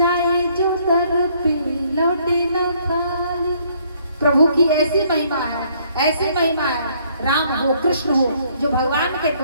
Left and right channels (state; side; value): inverted; both; correlation -0.65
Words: जो दर पे लौटे न खाली। प्रभु की ऐसी महिमा है, ऐसी महिमा है, राम हो कृष्ण हो, जो भगवान के